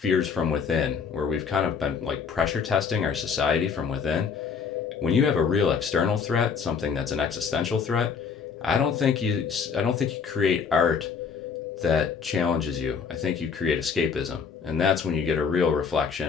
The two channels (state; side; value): quieter; right; 6.1 dB